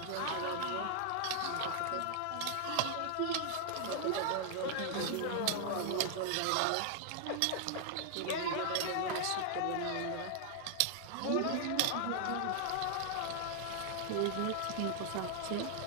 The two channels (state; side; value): different; both; correlation 0.00